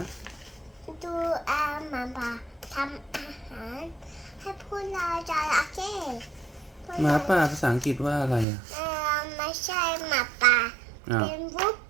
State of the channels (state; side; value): drops out; left; at 8.5 s